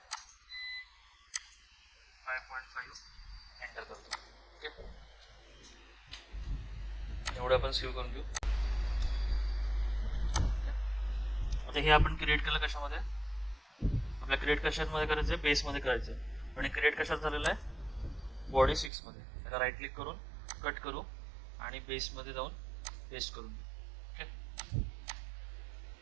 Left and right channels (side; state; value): left; drops out; at 18.9 s